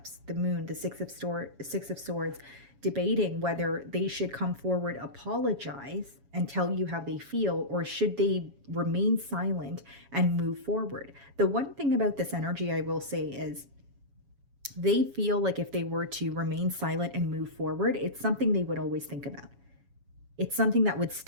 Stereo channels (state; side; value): late; left; 7.2 ms